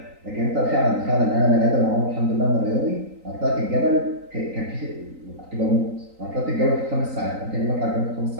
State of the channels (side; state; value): left; late; 3.9 ms